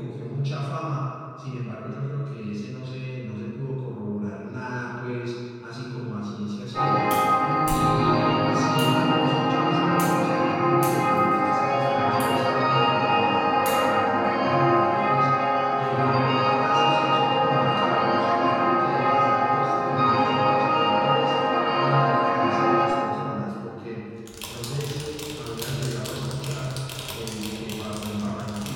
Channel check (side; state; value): both; identical; correlation 1.00